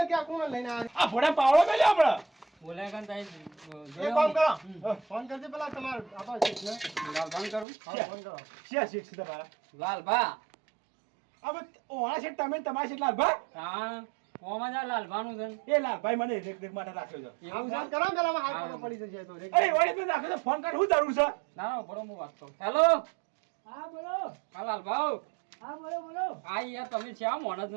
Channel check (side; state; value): left; drops out; at 7.7 s